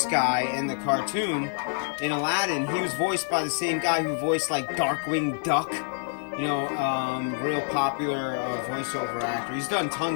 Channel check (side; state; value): right; silent; 60 dB below the other